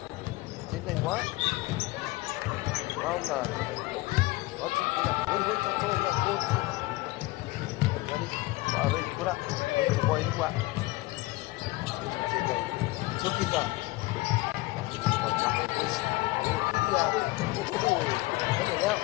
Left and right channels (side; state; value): right; quieter; 20.5 dB